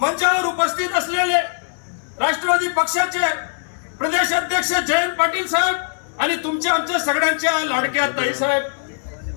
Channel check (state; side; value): silent; right; 65 dB below the other